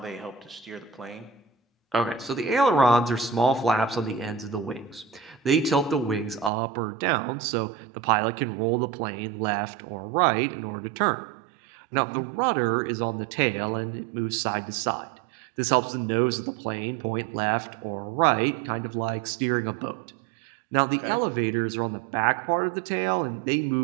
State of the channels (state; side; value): drops out; left; at 6.5 s